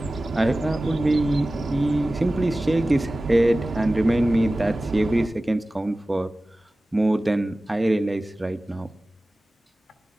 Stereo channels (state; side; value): normal; both; correlation 0.97